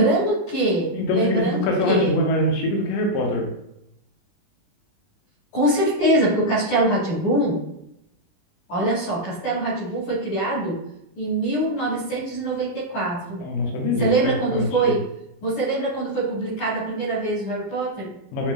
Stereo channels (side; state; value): right; late; 20 ms